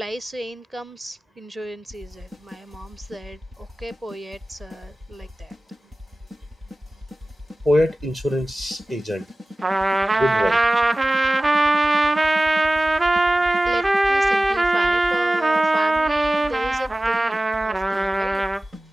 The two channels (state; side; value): normal; both; correlation 0.96